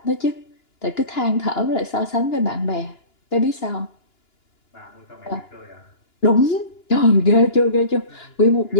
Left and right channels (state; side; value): late; right; 2.9 ms